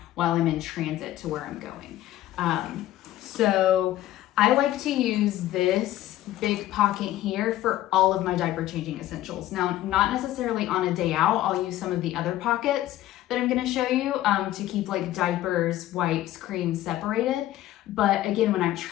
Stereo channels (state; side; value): quieter; right; 14.3 dB